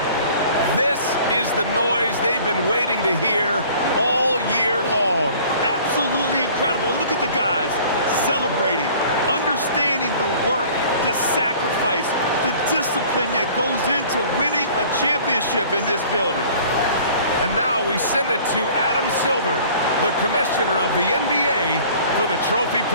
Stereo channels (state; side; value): inverted; both; correlation -0.49